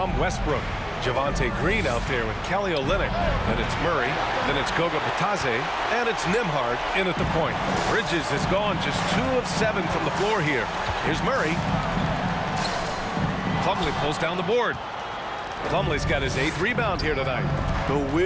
Westbrook. Javonte Green out there with Kelly Olynyk. Then it's Murray. Then it's Goga Bitadze. And it's Nembhard in at the point. Bridges has gone just 2 of 7 from the floor here. Here's Murray. Plumlee pulls down the board. Plumlee's got his 8th rebound here tonight. The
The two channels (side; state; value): both; identical; correlation 1.00